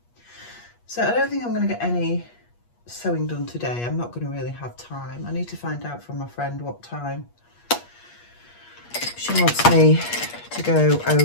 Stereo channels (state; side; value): late; right; 8.4 ms